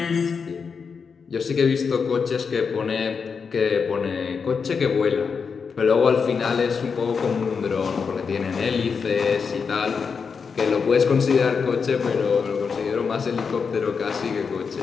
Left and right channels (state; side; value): quieter; right; 5.7 dB